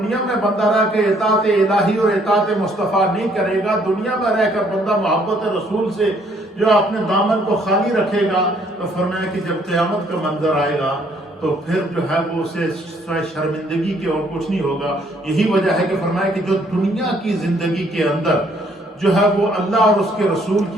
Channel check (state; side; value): normal; both; correlation 0.65